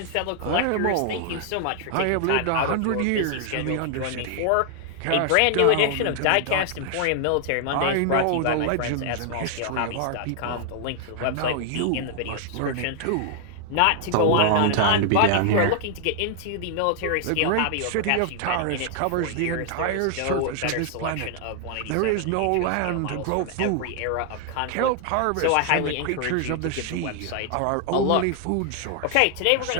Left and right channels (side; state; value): both; different; correlation 0.00